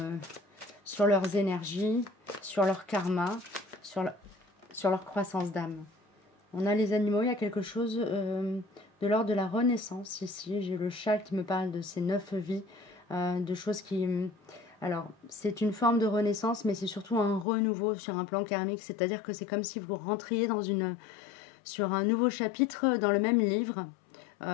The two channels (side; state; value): right; drops out; at 17.4 s